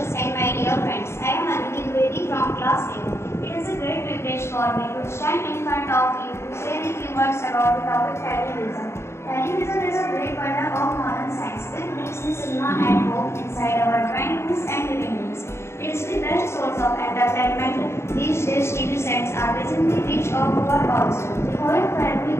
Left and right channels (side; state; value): right; late; 0.13 ms